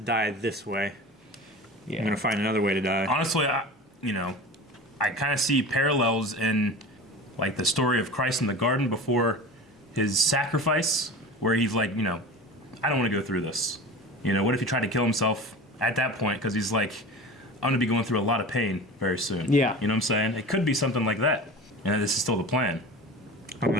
this way. Yeah. I'm gonna find another way to die." Honestly, I kind of see parallels in like the story of Christ in the garden before his sacrifice, where he's like, I don't want to go through this. What if he tried to kill himself at that point? Because he's like, I'm gonna be going through a lot of pain very soon. Yeah. You know what I'm saying? It could be something like that. And this is still the plan. I don't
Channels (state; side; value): normal; both; correlation 0.34